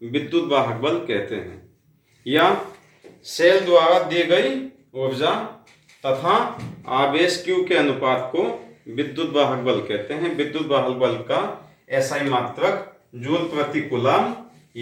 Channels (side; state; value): both; identical; correlation 1.00